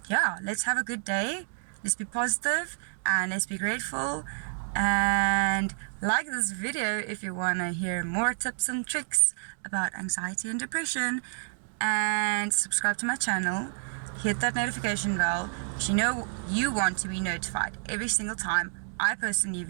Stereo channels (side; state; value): left; silent; digital silence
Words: yeah, let's have a good day, let's be positive, and let's be grateful. And like this video if you want to hear more tips and tricks about anxiety and depression, and subscribe to my channel, hit that notification bell, because you want to be notified every single time I post a new